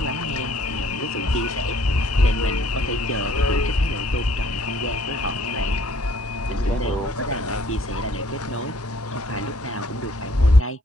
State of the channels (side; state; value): both; normal; correlation 0.61